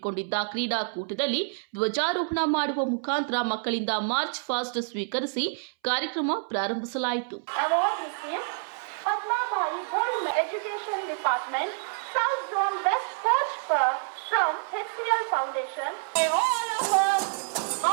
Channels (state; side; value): silent; left; 60 dB below the other